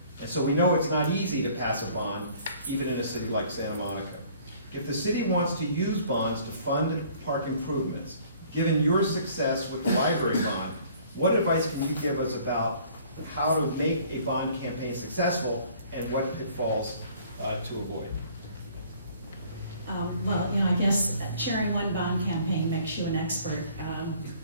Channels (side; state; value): both; inverted; correlation -0.55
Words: And so we know it's not easy to pass a bond, even in a city like Santa Monica. If the city wants to use bonds to fund park improvements, given your success with the library bond, what advice can you give us about how to make a bond campaign successful and what pitfalls to avoid? Well, I guess chairing one bond campaign makes you an expert.